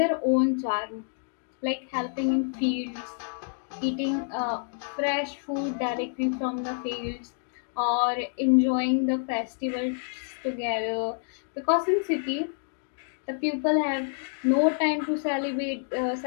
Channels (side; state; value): right; silent; digital silence